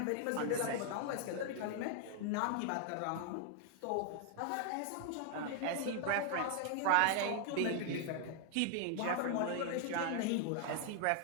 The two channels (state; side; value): different; both; correlation 0.00